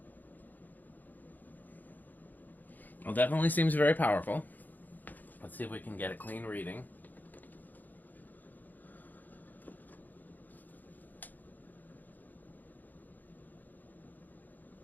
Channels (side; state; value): right; late; 0.084 ms